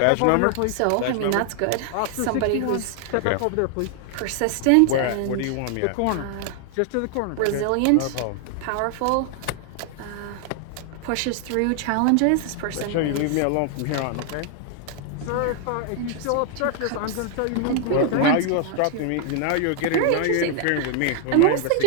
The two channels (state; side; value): different; both; correlation 0.00